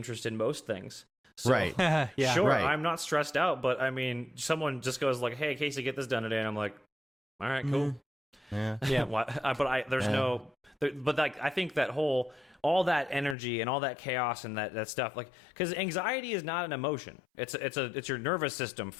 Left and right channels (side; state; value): right; drops out; at 13.4 s